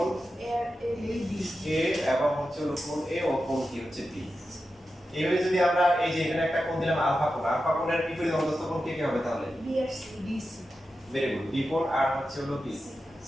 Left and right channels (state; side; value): normal; both; correlation 0.91